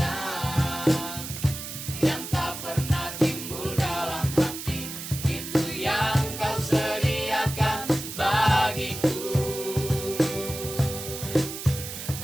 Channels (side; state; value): right; noise; hiss, 8 dB below the sound